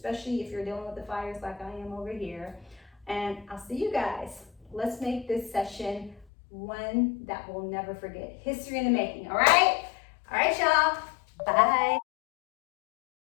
if you're dealing with the fires like I am over here. And I'll see you guys. Let's make this session one that we'll never forget. History in the making, all right? All right, y'all. Bye.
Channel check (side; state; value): right; drops out; at 6.2 s